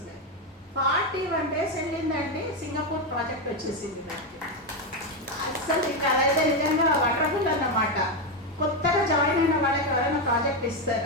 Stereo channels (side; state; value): both; normal; correlation 0.08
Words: 41 days వెళ్ళిందండి, సింగపూర్ ప్రాజెక్ట్ వచ్చేసింది నాకు. అసలు ఇక అదైతే నిజంగా వండర్ఫుల్ అన్నమాట. కొత్తగా జాయిన్ అయిన వాళ్ళకి ఎవరైనా ప్రాజెక్ట్